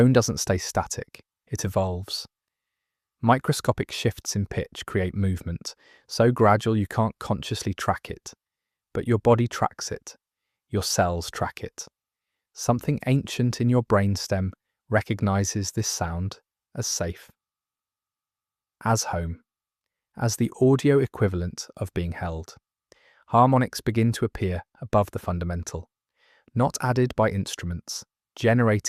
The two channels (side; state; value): both; identical; correlation 1.00